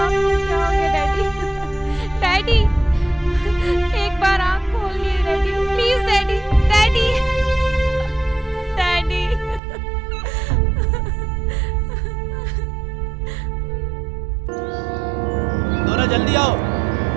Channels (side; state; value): left; drops out; at 9.6 s